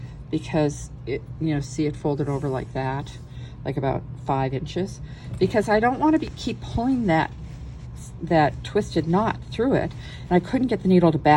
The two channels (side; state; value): both; identical; correlation 1.00